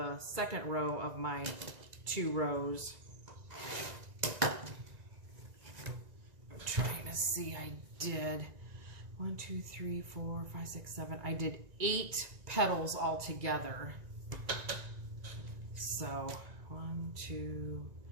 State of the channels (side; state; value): left; late; 1.9 ms